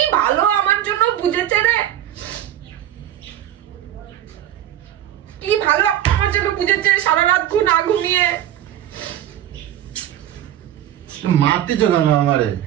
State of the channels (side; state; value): left; quieter; 11.8 dB